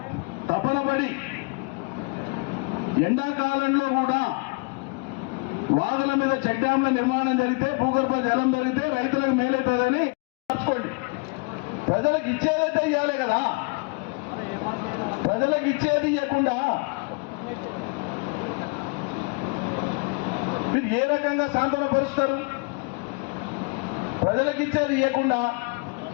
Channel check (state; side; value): quieter; right; 30.4 dB